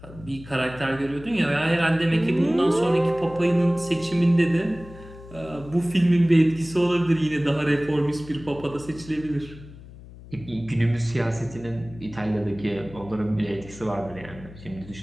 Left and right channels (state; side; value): noise; left; hum, 18 dB below the sound